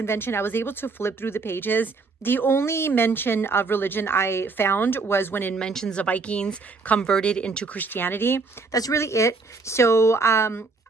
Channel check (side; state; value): left; quieter; 4.1 dB